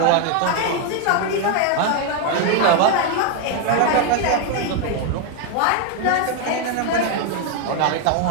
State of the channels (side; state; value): both; different; correlation 0.01